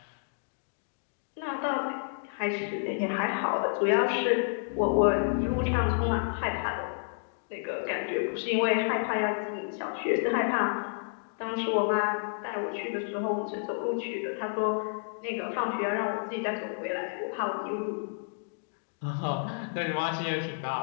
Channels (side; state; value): right; silent; digital silence